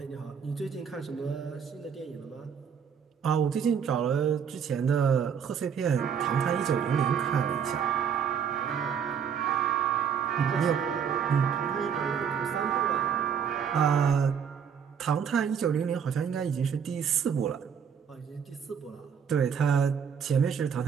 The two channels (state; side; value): quieter; left; 7.4 dB